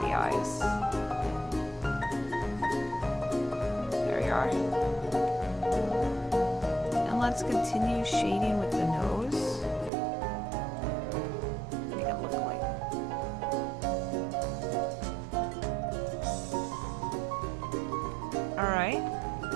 the eyes. There you are. And let's continue shading with the nose. Make it look like. Alright.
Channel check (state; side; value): drops out; left; at 9.9 s